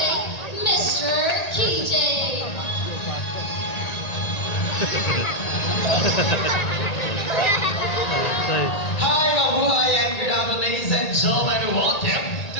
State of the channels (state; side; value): late; right; 1.9 ms